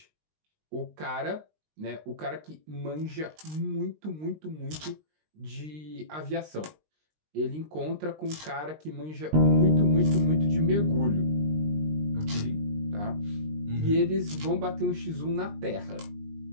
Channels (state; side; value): late; left; 19 ms